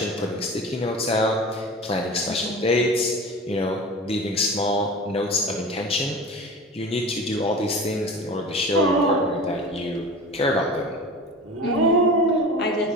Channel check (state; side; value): normal; both; correlation 0.34